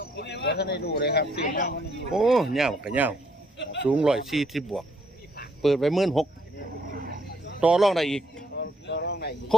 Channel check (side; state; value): both; normal; correlation 0.69